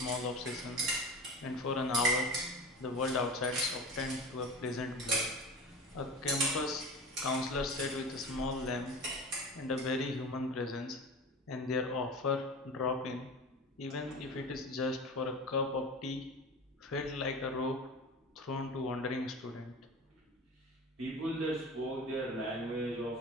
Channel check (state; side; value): normal; both; correlation 0.33